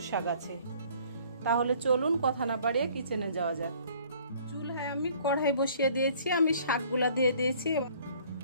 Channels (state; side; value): inverted; both; correlation -0.56